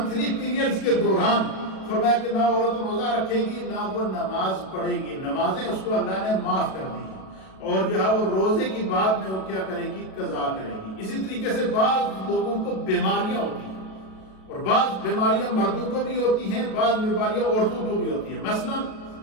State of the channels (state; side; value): late; right; 37 ms